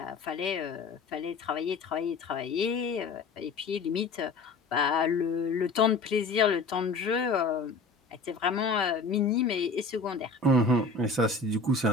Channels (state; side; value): quieter; right; 3.9 dB